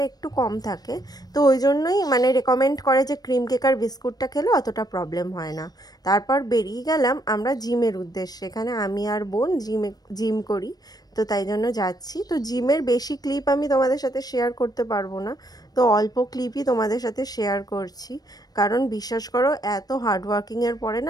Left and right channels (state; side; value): late; right; 0.19 ms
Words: একটু কম থাকে, তো ওই জন্যই রেকমেন্ড করে যে ক্রিম কেকার বিস্কুটটা খেলে অতটা প্রবলেম হয় না। তারপর বেরিয়ে গেলাম আমরা জিমের উদ্দেশ্যে। এখানে আমি আর বোন জিম করি, তো তাই জন্য যাচ্ছি। তো জিমের বেশি ক্লিপ আমি তোমাদের সাথে শেয়ার করতে পারবো না, তো অল্প ক্লিপই তোমাদের সাথে শেয়ার করছি। কারণ বিশ্বাস করো এত হার্ডওয়ার্কিংয়ের পরে না